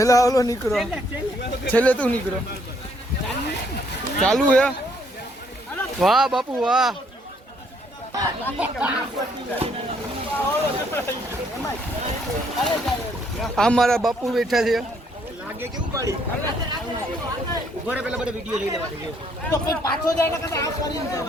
ઓલો નીકળો, છેલ્લે તું નીકળો. ચાલુ હે. વાહ બાપુ વાહ. આ મારા બાપુ બેઠા છે. લાગે કેવું પડી ઉભો રે, પેલા બધા વિડિયો લઈ લેવા દે તો કોઈ પાછો જાય ને કદા આ કરી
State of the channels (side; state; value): both; normal; correlation 0.68